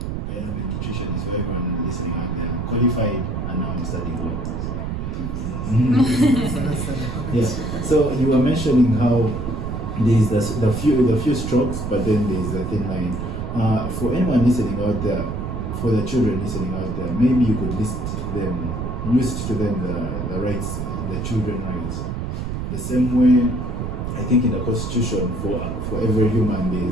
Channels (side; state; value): right; noise; rumble, 4 dB below the sound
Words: a nutritionist, so everyone listening out there, I'm qualified, and now I'm studying law. Yeah. So you were mentioning how there's the few strokes, but then there's the thin line. For anyone listening out there, for the children listening out there, maybe you could list to them the rights, the children rights. The same way, I think in the Constitution, for every human there